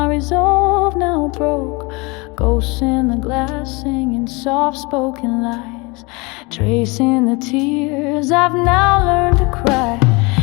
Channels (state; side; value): quieter; right; 27.0 dB